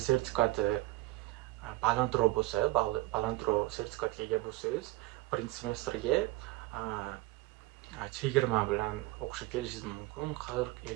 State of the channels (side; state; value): left; quieter; 19.7 dB